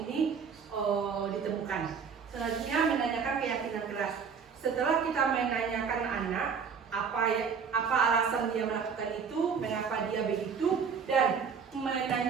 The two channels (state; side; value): quieter; left; 6.3 dB